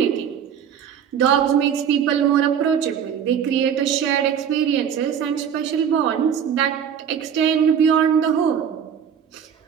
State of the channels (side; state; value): left; quieter; 8.2 dB